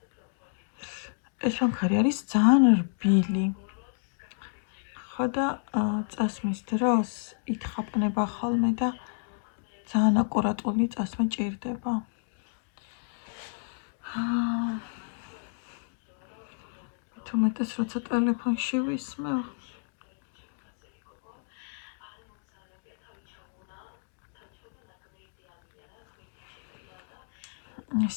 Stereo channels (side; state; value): right; silent; digital silence